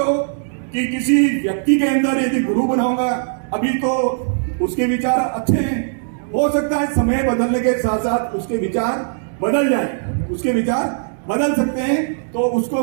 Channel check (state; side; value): silent; left; 66 dB below the other